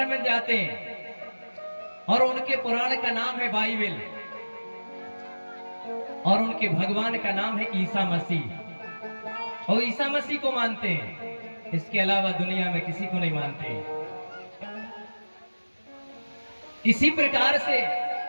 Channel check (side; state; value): both; inverted; correlation -1.00